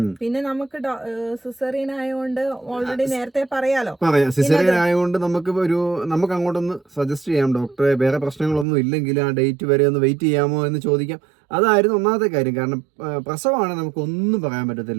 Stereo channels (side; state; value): left; drops out; at 8.7 s